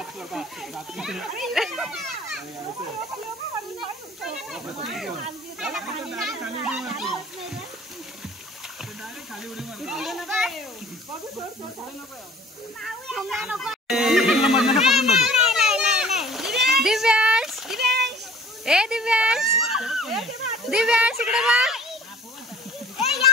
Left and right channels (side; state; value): both; normal; correlation 0.49